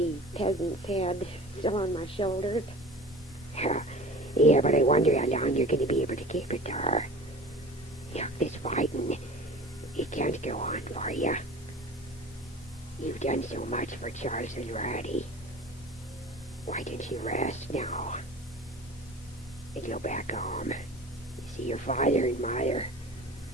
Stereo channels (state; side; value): normal; both; correlation 0.39